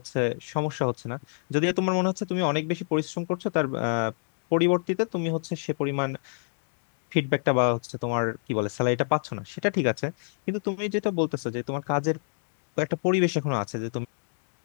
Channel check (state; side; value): silent; right; digital silence